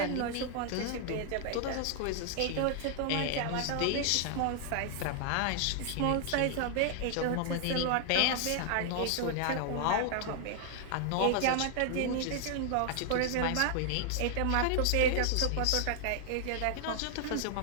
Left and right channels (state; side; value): different; both; correlation 0.00